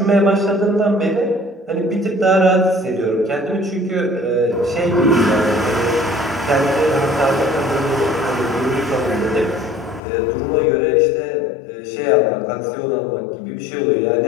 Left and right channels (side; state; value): right; drops out; at 10.0 s